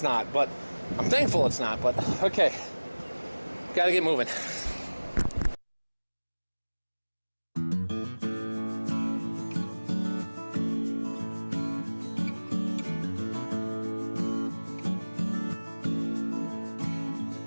not. But I'm thankful it's not, but okay. Gotta get moving.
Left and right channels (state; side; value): inverted; both; correlation -1.00